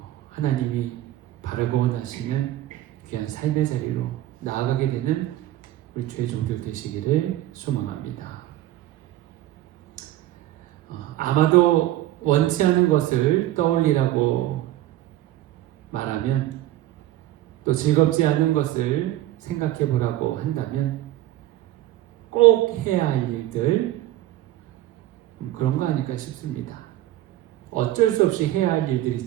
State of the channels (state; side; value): quieter; left; 14.7 dB